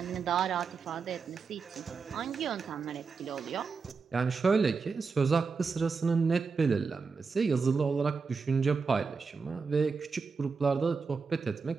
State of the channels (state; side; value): quieter; left; 4.9 dB